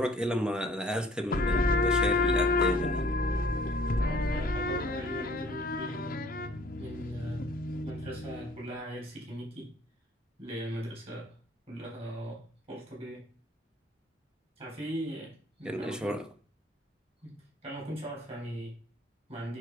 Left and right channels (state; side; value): normal; both; correlation 0.55